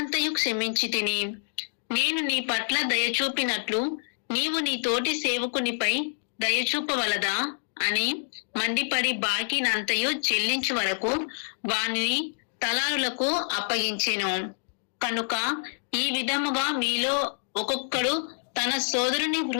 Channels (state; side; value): silent; right; digital silence